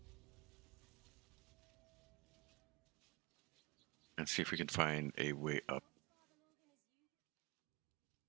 And see if we can find a way up.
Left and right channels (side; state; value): left; quieter; 25.7 dB